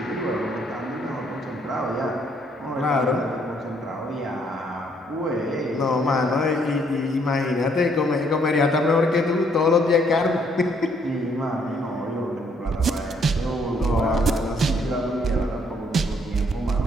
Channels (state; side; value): normal; both; correlation 0.68